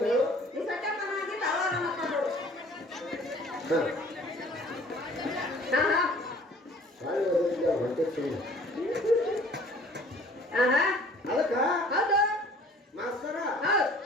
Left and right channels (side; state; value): both; normal; correlation 0.52